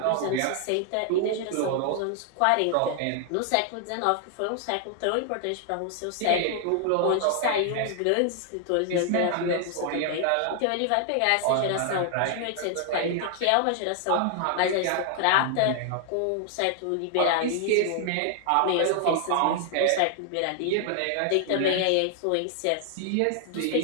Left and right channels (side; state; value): both; different; correlation 0.00